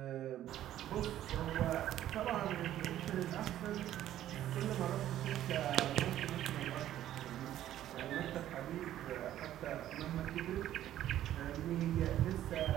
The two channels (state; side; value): quieter; left; 12.5 dB